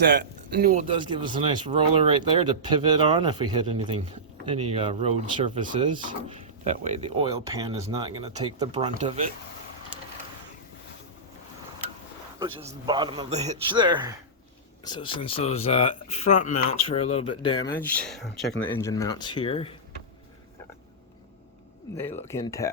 Newell does give us a nice roller right there to pivot on if we hit anything, any road surfaces. That way the oil pan is not gonna take the brunt of it, which is the bottom of the hitch there. So since those front mounts were a little bit damaged, I'm checking the engine mounts here. They look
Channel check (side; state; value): both; normal; correlation -0.14